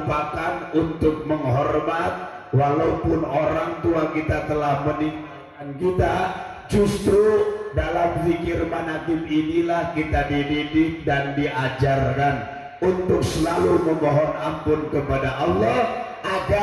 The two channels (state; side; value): identical; both; correlation 1.00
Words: untuk menghormat. Walaupun orang tua kita telah meninggalkan kita, justru dalam zikir manaqib inilah kita dididik dan diajarkan untuk selalu memohon ampun kepada Allah